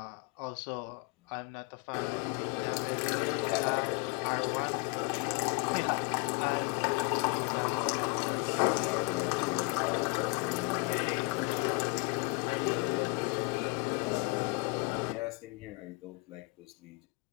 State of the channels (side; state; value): right; quieter; 28.4 dB